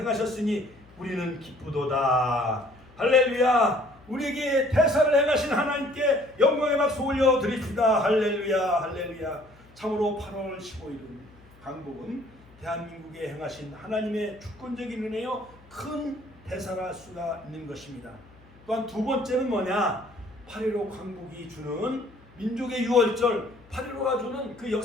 우리는 기쁘도다. 할렐루야. 우리에게 대사를 행하신 하나님께 영광의 박수 올려드립시다. 할렐루야 할렐루야. 참으로 8월 15일은 광복은 대한민국에 행하신 하나님의 주권적인 은혜요 큰 대사라 할 수가 있는 것입니다. 또한 두 번째는 뭐냐? 8.15 광복이 주는 민족의 유월절 8.15가 주는 그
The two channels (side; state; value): left; noise; hum, 26 dB below the sound